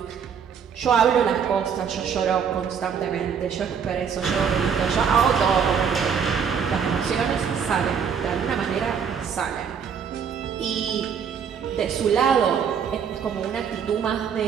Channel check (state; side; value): quieter; left; 7.1 dB